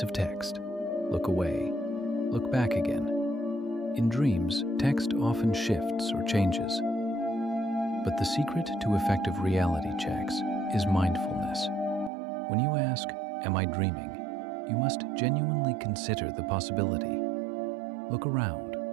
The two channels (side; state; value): left; drops out; at 12.1 s